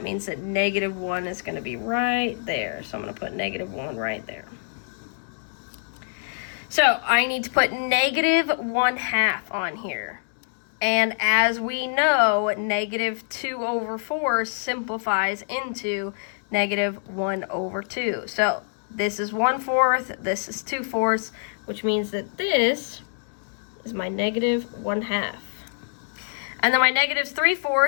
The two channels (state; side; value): silent; right; 61 dB below the other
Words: means that negative 1 is going to be right there. So I'm going to put negative 1 right there. So I need to put negative 1/2 on here. And as we know, negative 2/4 simplifies into negative 1/2. So this is 1/4, this is 2/4, which means that this is my negative 1/2. And then my negative